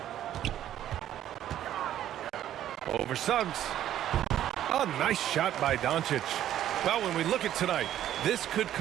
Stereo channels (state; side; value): quieter; left; 11.7 dB